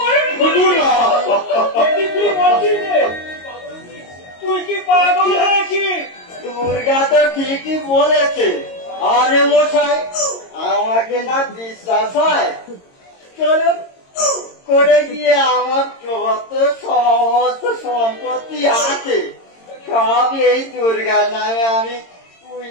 তুই কি পাগল হয়েছিস? দুর্গা তো ঠিকই বলেছে। আরে মশাই, আমাকে না বিশ্বাস হয়, চলুন করে গিয়ে আমার যত সমস্ত সম্পত্তি আছে সব এই দুর্গার নামে আমি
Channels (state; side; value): late; right; 22 ms